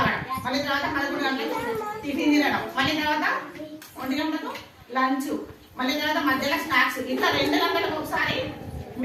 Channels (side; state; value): both; identical; correlation 1.00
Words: మళ్ళీ తర్వాత 11 గంటలకు టిఫిన్ తినడం, మళ్ళీ తర్వాత 1 గంటలకు లంచ్, మళ్ళీ తర్వాత మధ్యలో స్నాక్స్. ఇట్లా 2 గంటలకు ఒకసారి